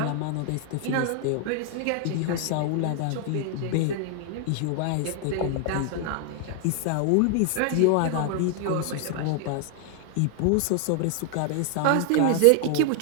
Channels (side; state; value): both; different; correlation 0.00